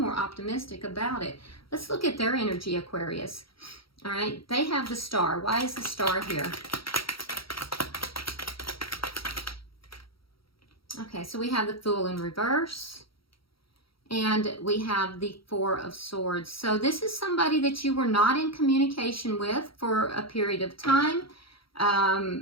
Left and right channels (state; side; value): late; right; 0.75 ms